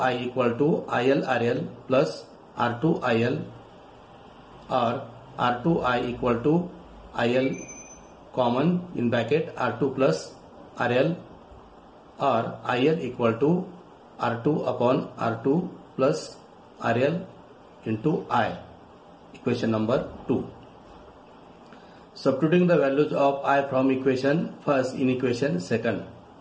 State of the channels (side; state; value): both; identical; correlation 1.00